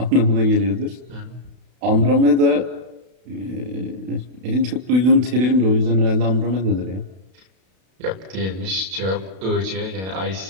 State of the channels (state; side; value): late; left; 32 ms